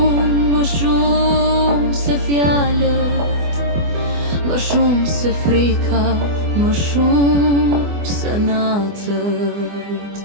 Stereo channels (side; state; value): left; late; 24 ms